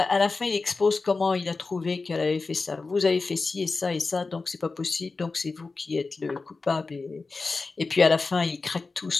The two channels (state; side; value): quieter; right; 3.9 dB